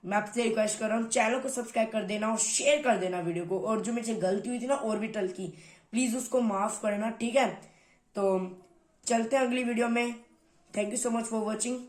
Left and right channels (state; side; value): identical; both; correlation 1.00